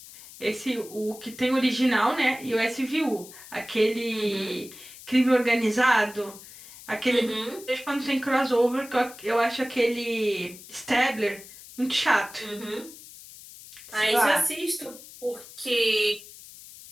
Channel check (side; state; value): left; noise; hiss, 18 dB below the sound